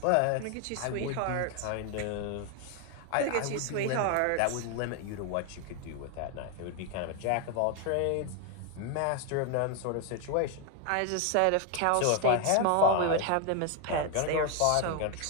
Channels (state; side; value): different; both; correlation 0.01